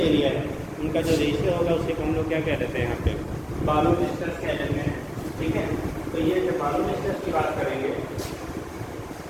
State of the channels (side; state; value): both; identical; correlation 1.00